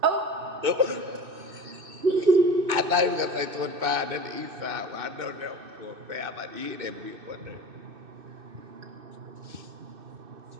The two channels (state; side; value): late; left; 2.6 ms